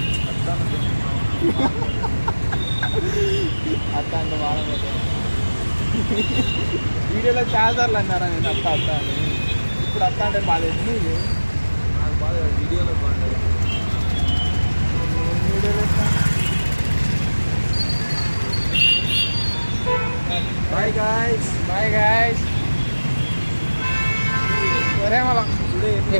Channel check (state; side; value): inverted; both; correlation -1.00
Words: అత్త అంటే బాగా వీడియోలో చాలాసార్లు అన్నారా నేను అత్త అత్త అని. ఇప్పుడు అత్త అంటే బాగా నీకు నాకు బాగా వీడియోలో బాగుంటుంది. వీడియోలో బాయ్ గాయ్స్. Bye guys. సరే మళ్ళా